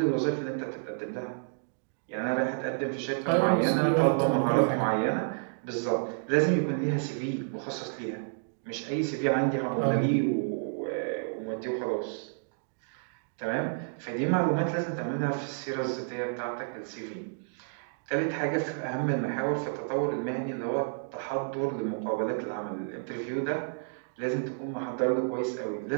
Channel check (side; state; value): left; silent; digital silence